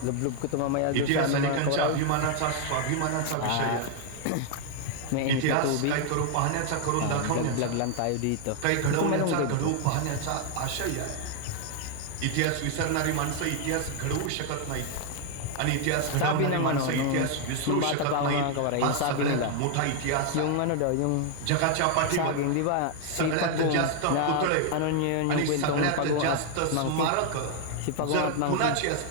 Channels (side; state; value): both; different; correlation 0.00